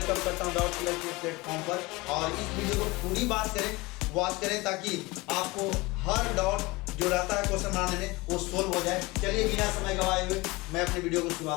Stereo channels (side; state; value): right; quieter; 22.9 dB